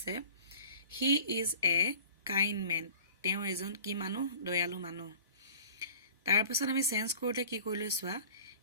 he is a kind man তেওঁ এজন কি মানুহ দয়ালু মানুহ তাৰ পিছত আমি চেঞ্জ কৰোতে কি কৰিলো চোৱা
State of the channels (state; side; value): inverted; both; correlation -0.45